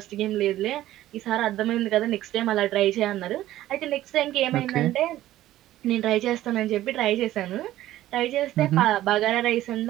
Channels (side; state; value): left; quieter; 14.3 dB